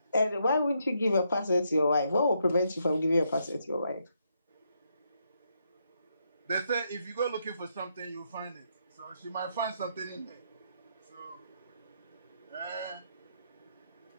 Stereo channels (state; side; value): inverted; both; correlation -0.78